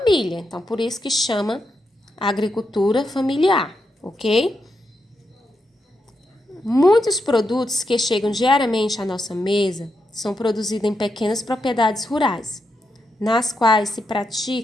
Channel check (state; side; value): normal; both; correlation 0.84